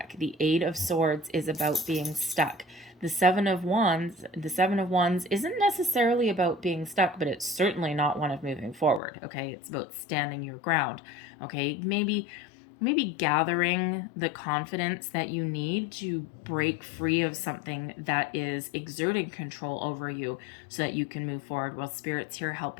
The Eight of Swords is about being stuck. The Seven of Wands isn't necessarily about being stuck, but it's certainly not one of moving forward, okay? It's about standing your ground, okay? Maybe gathering the confidence that you need to break free of something that is exerting control over you so that you can move forward. Well, Spirit's here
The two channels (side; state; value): right; drops out; at 9.0 s